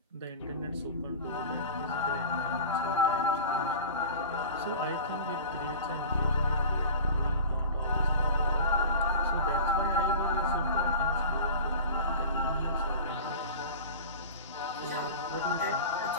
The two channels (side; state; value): both; inverted; correlation -0.36